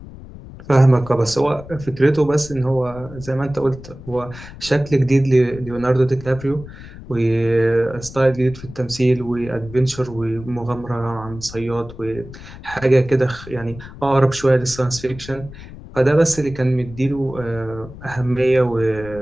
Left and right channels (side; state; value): left; noise; rumble, 16 dB below the sound